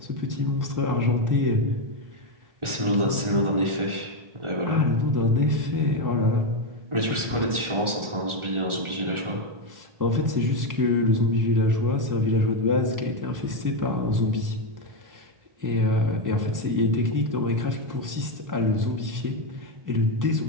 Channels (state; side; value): late; left; 1.4 ms